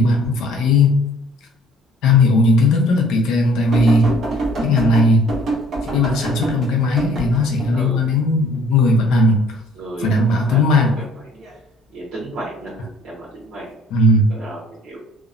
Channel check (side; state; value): both; normal; correlation 0.55